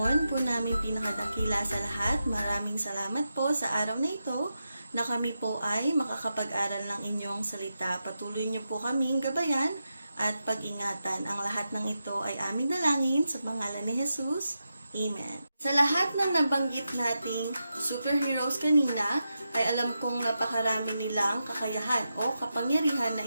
po namin pinakadakila sa lahat, maraming salamat po sa araw na ito na kami po ay makakapag-aral ng inyong salita. Patuloy niyo po kaming gabayan at pag-ingatan. Ang lahat ng ito ay aming dalangin sa pangalan ni Jesus. Amen. Sa lahat ng nabanggit nating superheroes kanina, ay alam kong napakarami nilang kakayahan o kapangyarihan na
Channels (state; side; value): inverted; both; correlation -0.89